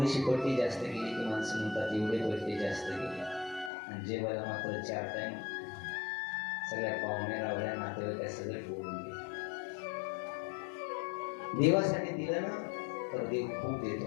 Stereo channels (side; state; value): right; drops out; at 3.7 s